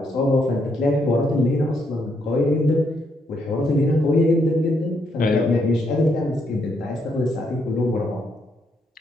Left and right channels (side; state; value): both; normal; correlation 0.75